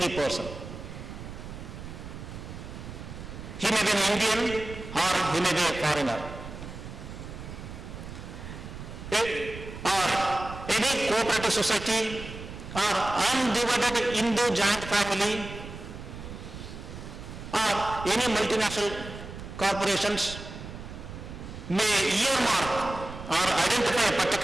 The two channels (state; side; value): noise; right; rumble, 11 dB below the sound